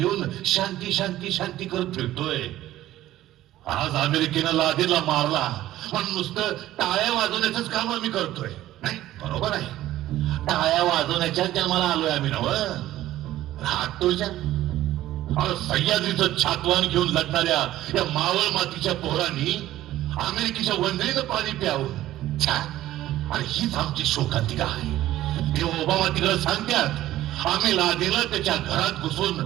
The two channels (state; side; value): quieter; left; 14.4 dB